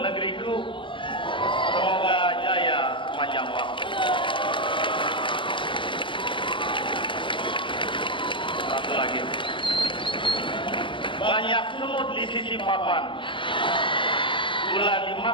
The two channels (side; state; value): right; late; 0.25 ms